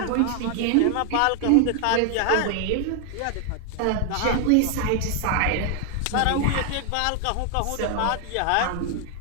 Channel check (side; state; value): both; different; correlation 0.00